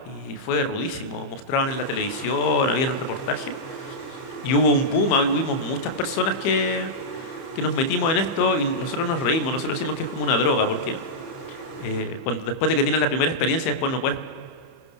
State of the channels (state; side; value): late; right; 30 ms